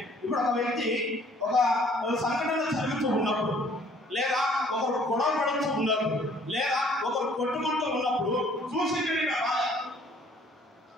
ఇప్పుడు ఒక వ్యక్తి ఒక సంఘటన జరుగుతూ ఉన్నప్పుడు, లేదా ఒకరు గొడవ పడుతూ ఉన్నప్పుడు, లేదా ఒకరు కొట్టుకుంటూ ఉన్నప్పుడు చూసి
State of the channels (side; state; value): both; normal; correlation 0.58